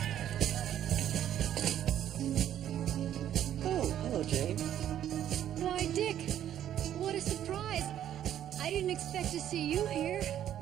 Expect to see you here.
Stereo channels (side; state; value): left; quieter; 10.9 dB